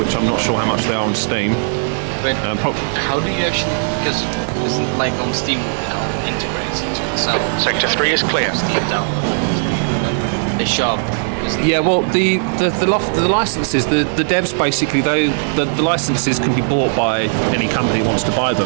I'm not sure how much they are on Steam. But how do you actually? Because isn't like on Steam, integrates into itself. Sector 3 is clear. Steam download. They shove. Yeah, well, the licenses, the devs basically, the licenses can be bought by any company who wants to buy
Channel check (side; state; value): left; silent; 60 dB below the other